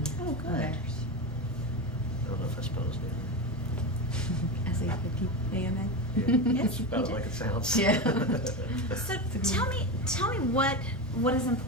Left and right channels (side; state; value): both; normal; correlation 0.18